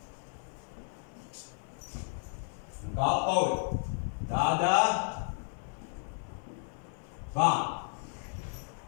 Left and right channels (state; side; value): silent; right; 55 dB below the other